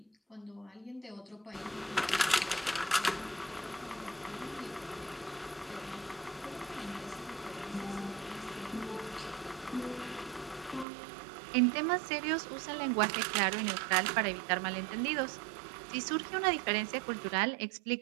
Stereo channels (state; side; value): drops out; left; at 10.9 s